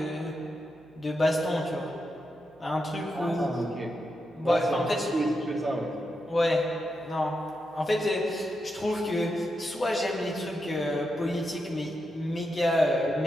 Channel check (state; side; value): noise; right; hum, 30 dB below the sound